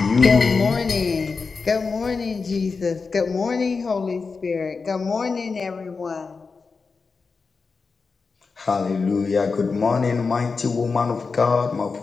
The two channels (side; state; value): right; quieter; 4.7 dB